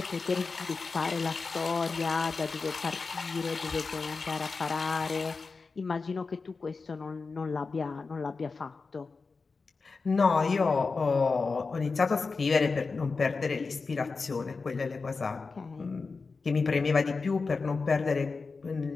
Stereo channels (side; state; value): right; quieter; 4.4 dB